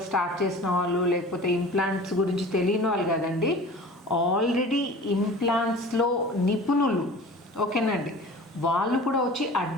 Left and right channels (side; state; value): both; normal; correlation 0.41